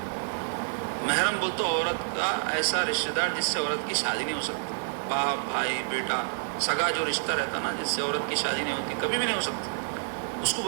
محرم بولتے عورت کا ایسا رشتہ دار جس سے عورت کی شادی نہیں ہو سکتی، باپ بھائی بیٹا سگا جو رشتہ رہتا نا، جس سے عورت کی شادی نہیں ہوتی، کبھی بھی نہیں ہو سکتی، اس کو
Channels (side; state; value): left; silent; digital silence